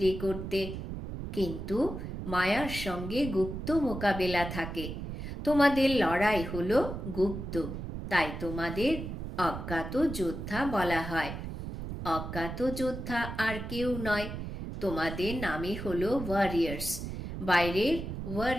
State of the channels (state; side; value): noise; right; rumble, 7 dB below the sound